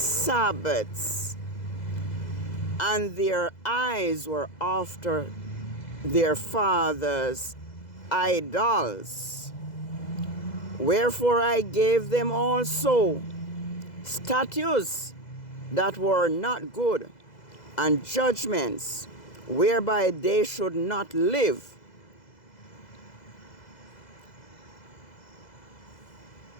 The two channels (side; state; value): right; late; 2.0 ms